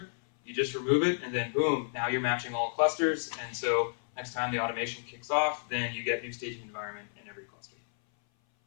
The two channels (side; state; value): right; silent; 57 dB below the other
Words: you just remove it, and then boom, now you're matching all clusters, and so next time the automation kicks off, then you get new staging environment in every cluster.